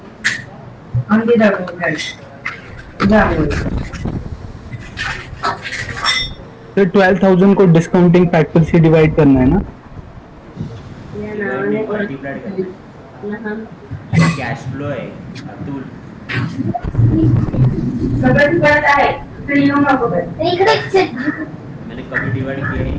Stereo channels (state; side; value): identical; both; correlation 1.00